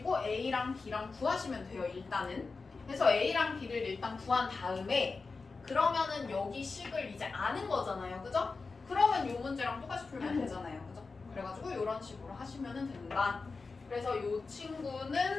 a랑 b랑 구하시면 돼요. 일단은. 그래서 a랑 b를 일단 구한 다음에 그러면은 여기 식을 이제 아는 거잖아요. 그죠? 그러면 이 문제랑 똑같이 풀면 되잖아요. 그죠? 그래가지고 이런 식으로 하시면 된다. 그래서 이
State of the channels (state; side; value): quieter; right; 4.2 dB